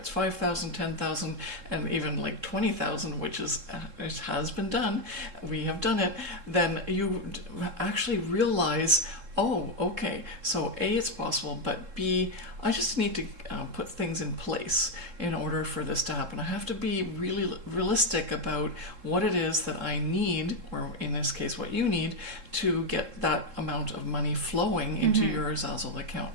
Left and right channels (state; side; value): late; left; 3.7 ms